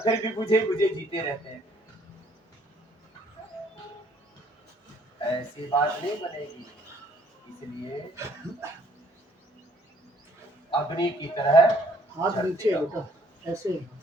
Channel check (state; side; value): late; left; 1.1 ms